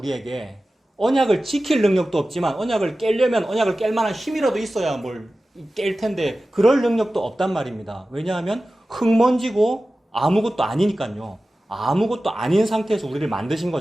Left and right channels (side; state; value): both; normal; correlation 0.95